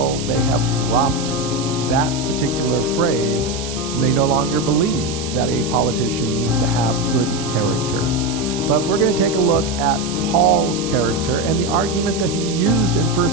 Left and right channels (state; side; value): noise; right; hiss, 9 dB below the sound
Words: they have dropped that particular phrase, and they no longer believe that a politician needs to have good character. But we're going to take a look at Paul's character and the argument that he used in